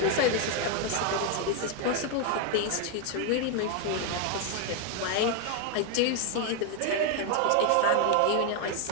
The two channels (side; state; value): both; different; correlation 0.01